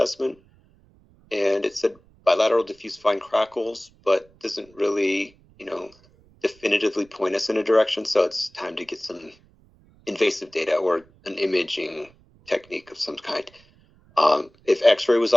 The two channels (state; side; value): noise; right; rumble, 30 dB below the sound